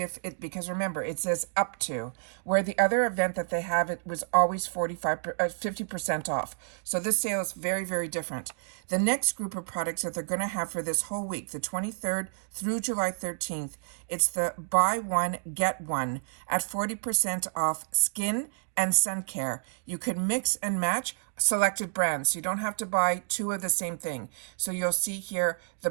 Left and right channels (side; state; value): left; silent; digital silence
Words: if it, because remember, it says up to, where the other event that they have, it was always 50% off. So this sale is very, very different. The next group of products that they're going to have for this whole week, the 23rd through July 13th, it's the buy one, get one at 40% off skin and sun care. You can mix and match selected brands. You don't have to buy two of the same thing. So you'll see here, the